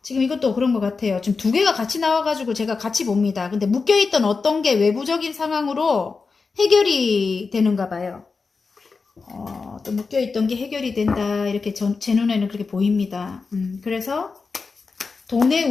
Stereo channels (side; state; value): right; quieter; 4.6 dB